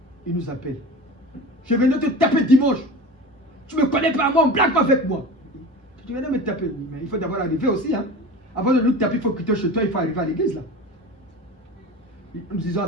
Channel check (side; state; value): both; normal; correlation 0.33